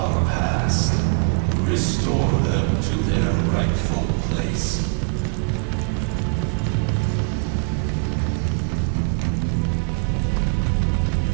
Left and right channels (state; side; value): quieter; left; 35.4 dB